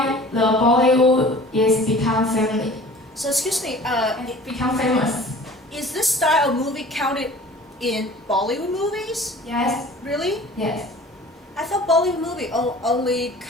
the Bollywood is become family. So excuse me, Become famous. is this style of movie counted in Bollywood movies? Yes. Really? Yes. I thought Bollywood movie only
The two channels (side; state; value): both; normal; correlation 0.45